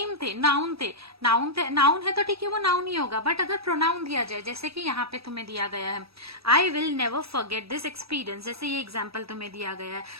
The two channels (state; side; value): late; left; 0.77 ms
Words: थे, नाउन थे। नाउन है तो ठीक है वो नाउन ही होगा। बट अगर प्रोनाउन दिया जाए, जैसे कि यहाँ पे तुम्हें दिया गया है I will never forget this experience, जैसे ये एग्जाम्पल तुम्हें दिया गया है।